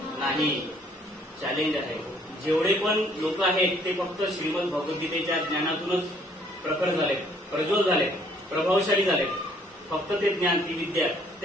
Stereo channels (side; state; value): both; normal; correlation 0.62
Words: नाही. चॅलेंज आहे. जेवढे पण लोक आहेत ते फक्त श्रीमद भगवद्गीतेच्या ज्ञानातूनच प्रखर झाले, प्रज्वल झाले, प्रभावशाली झाले. फक्त ते ज्ञान, ती विद्या,